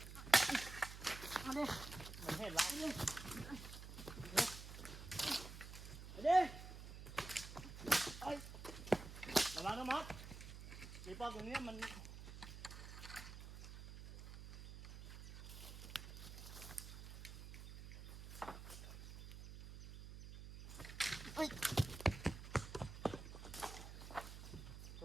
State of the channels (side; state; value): right; noise; hum, 10 dB below the sound